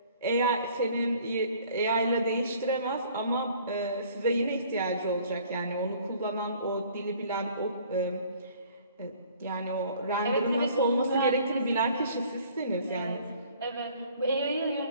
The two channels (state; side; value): inverted; both; correlation -0.55